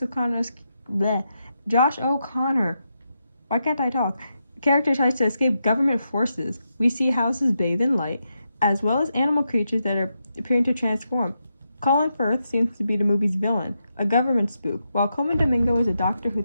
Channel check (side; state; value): both; inverted; correlation -0.85